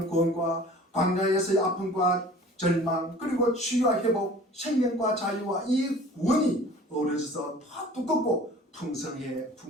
구원과 광야에서의 아픔과 절망 그리고 치유와 회복, 생명과 자유와 이 구원이 어우러져서 더 두껍고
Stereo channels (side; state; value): both; normal; correlation 0.46